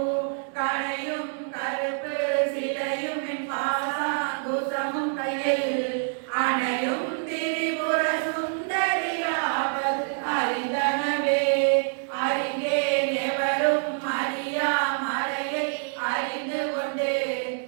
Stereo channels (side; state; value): left; silent; digital silence